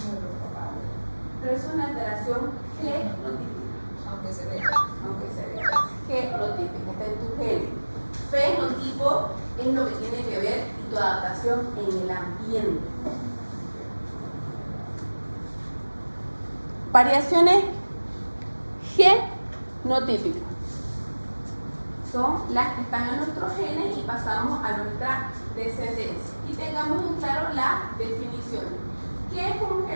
de los papás. Pero es una alteración genotípica. Aunque se vea. Genotípica, está en tu genes. Fenotipo es lo que tiene que ver y tu adaptación en el ambiente. Variaciones genotípicas son las que están en nuestros genes y pasamos a nuestra descendencia. Y tengamos en claro la definición. ¿Qué es un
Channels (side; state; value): both; inverted; correlation -1.00